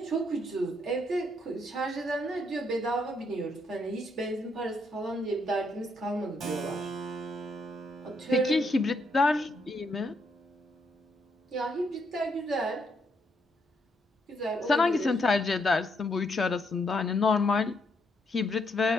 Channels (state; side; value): normal; both; correlation 0.75